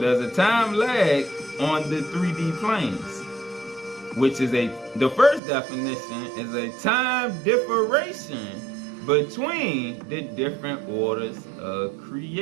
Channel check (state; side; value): drops out; left; at 5.4 s